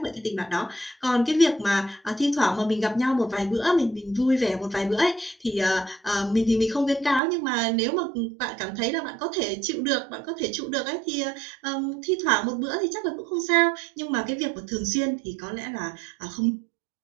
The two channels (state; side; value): drops out; left; at 7.2 s